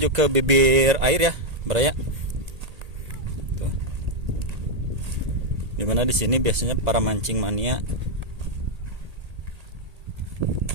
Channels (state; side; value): late; left; 1.8 ms